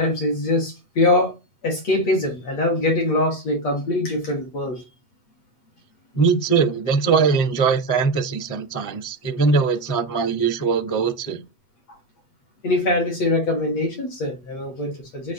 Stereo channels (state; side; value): late; right; 8.2 ms